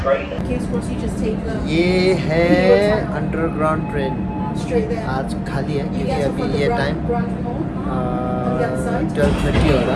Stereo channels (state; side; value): identical; both; correlation 1.00